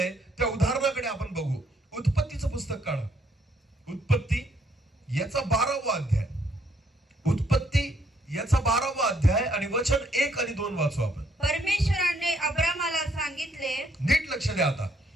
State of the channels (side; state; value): both; normal; correlation 0.70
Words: त्या उदाहरणाकडे आपण बघू. उत्पत्तीचं पुस्तक काढा. उत्पत्ती याचा 12वा अध्याय. उत्पत्ती याचा 12वा अध्याय आणि वचन 1 आणि 2 वाचू आपण. परमेश्वराने अब्रामाला सांगितले, नीट लक्ष द्या आता.